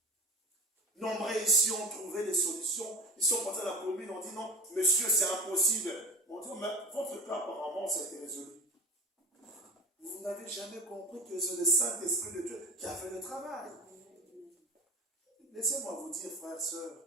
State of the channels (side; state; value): both; normal; correlation 0.35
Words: Nombreux ici ont trouvé des solutions. Ils sont partis à la commune, on dit non, monsieur, c'est impossible. On dit, mais votre cas, apparemment, ça a été résolu. Vous n'avez jamais compris que c'est le Saint-Esprit de Dieu qui a fait le travail. Laissez-moi vous dire, frères,